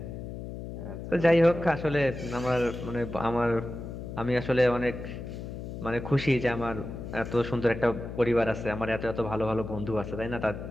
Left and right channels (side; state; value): left; noise; hum, 8 dB below the sound